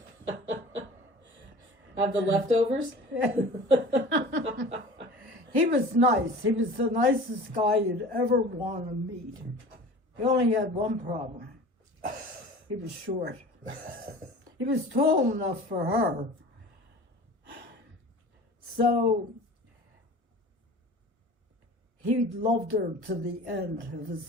Have the leftovers? He was nice. He was the nicest guy you'd ever want to meet. He only had one problem. He was short. He was tall enough for her. So he loved her to the end of his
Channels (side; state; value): left; late; 1.1 ms